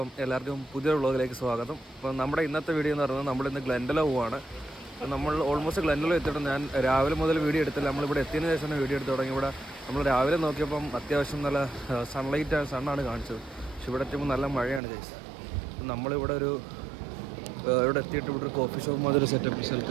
എല്ലാവർക്കും പുതിയൊരു വ്ളോഗിലേക്ക് സ്വാഗതം. അപ്പം നമ്മുടെ ഇന്നത്തെ വീഡിയോ എന്ന് പറയുന്നത് നമ്മളിന്ന് ഗ്ലെൻഡലോ പോവാണ്. നമ്മൾ ഓൾമോസ്റ്റ് ഗ്ലെൻഡലോ എത്തിയിട്ട് ഞാൻ രാവിലെ മുതൽ വീഡിയോ എടുത്തില്ല. നമ്മളിവിടെ എത്തിയതിന് ശേഷം വീഡിയോ എടുത്ത് തുടങ്ങി. ഇവിടെ നമ്മൾ രാവിലെ നോക്കിയപ്പം അത്യാവശ്യം നല്ല സണ്ണാണ് കാണിച്ചത്. പക്ഷെ ഇവിടെ എത്തുമ്പോൾ നല്ല മഴയാണ് ഗൈസ്. നമ്മളിവിടെ ഇവിടെ എത്തിയിട്ട് ഇവിടെ ഒരു കോഫി ഷോപ്പ് മാതിരി സെറ്റപ്പ്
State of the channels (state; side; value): drops out; left; at 14.8 s